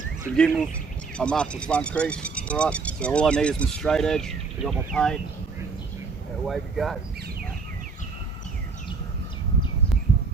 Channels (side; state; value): left; quieter; 4.7 dB